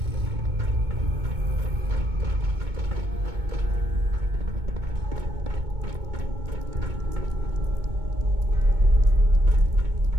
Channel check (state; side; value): late; left; 2.2 ms